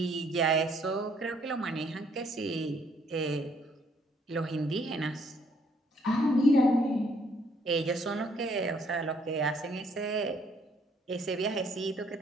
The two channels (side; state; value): both; normal; correlation 0.66